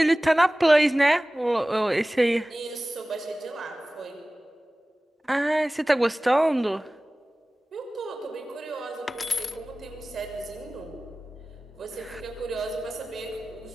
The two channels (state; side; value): normal; both; correlation 0.98